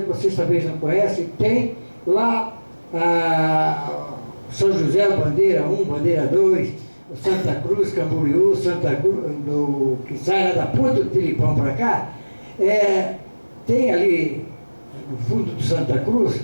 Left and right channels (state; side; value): inverted; both; correlation -1.00